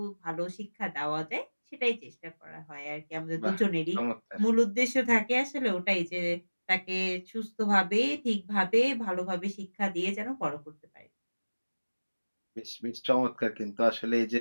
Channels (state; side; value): inverted; both; correlation -1.00